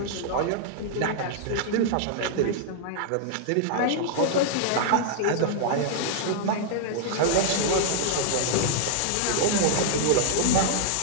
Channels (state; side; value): different; both; correlation -0.01